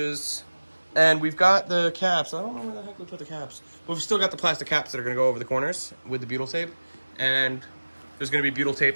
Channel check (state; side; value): inverted; both; correlation -1.00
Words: And we've got the caps. I don't know where the heck we put the caps. But we've still got the plastic caps that are going to go over the corners with the butyl tape. And there's going to be butyl